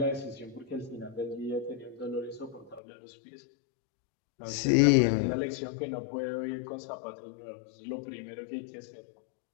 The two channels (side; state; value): right; drops out; at 2.8 s